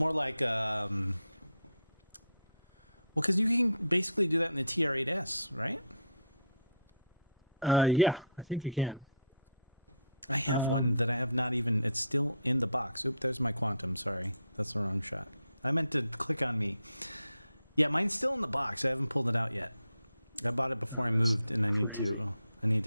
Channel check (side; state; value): both; inverted; correlation -0.65